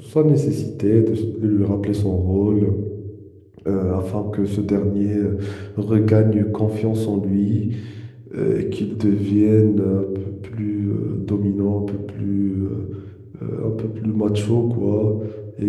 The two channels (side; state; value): both; identical; correlation 1.00